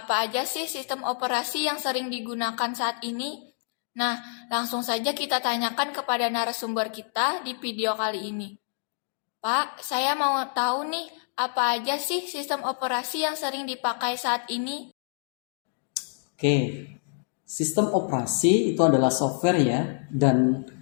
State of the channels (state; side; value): silent; right; digital silence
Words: aja sih sistem operasi yang sering digunakan saat ini? Nah, langsung saja kita tanyakan kepada narasumber kita di video kali ini. Pak, saya mau tahu nih, apa aja sih sistem operasi yang sering dipakai saat ini? Oke, sistem operasi itu adalah software ya, dan